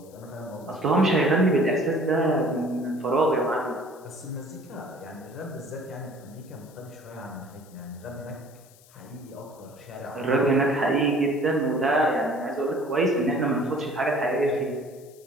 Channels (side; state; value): left; noise; hiss, 26 dB below the sound